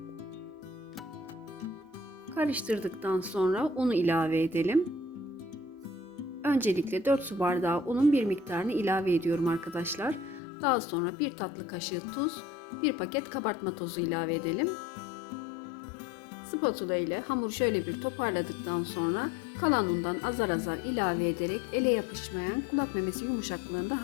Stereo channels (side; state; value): right; drops out; at 10.4 s